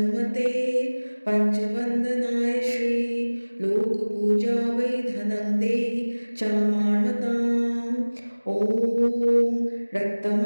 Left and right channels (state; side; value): inverted; both; correlation -1.00